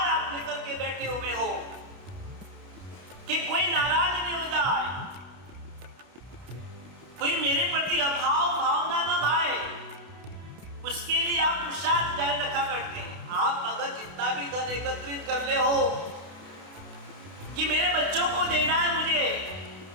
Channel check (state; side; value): late; left; 32 ms